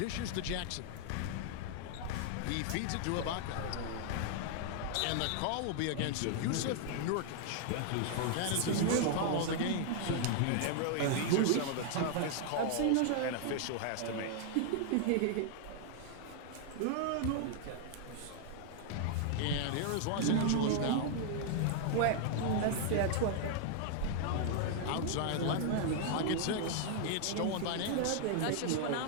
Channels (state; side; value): different; both; correlation 0.00